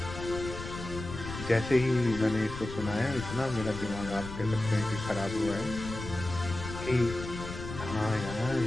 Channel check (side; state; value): left; noise; rumble, 9 dB below the sound